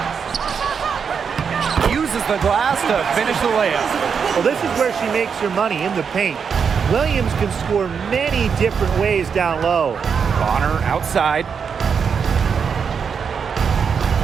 Uses the glass to finish the layup. Well, this is where she makes her money, in the paint. Williams can score many different ways down low. Bonner outside.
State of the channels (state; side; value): quieter; left; 6.4 dB